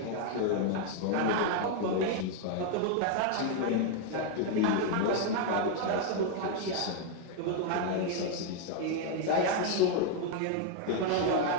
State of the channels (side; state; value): both; different; correlation 0.00